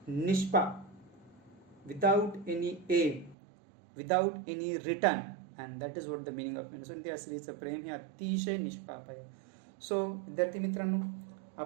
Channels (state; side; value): drops out; left; at 3.4 s